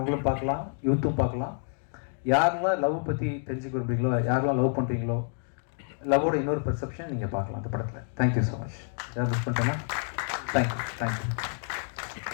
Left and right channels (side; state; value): right; silent; 59 dB below the other